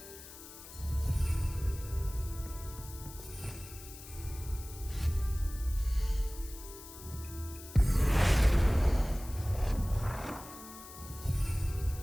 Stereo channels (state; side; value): noise; left; hiss, 16 dB below the sound